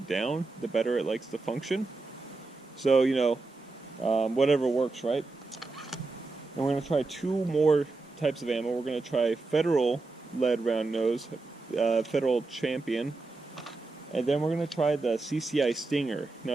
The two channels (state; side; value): quieter; left; 3.5 dB